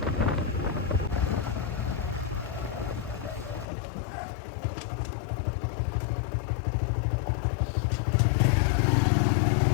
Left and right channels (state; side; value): drops out; right; at 3.7 s